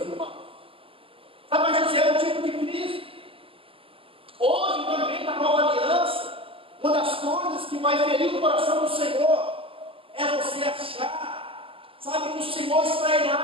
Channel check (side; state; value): left; late; 0.26 ms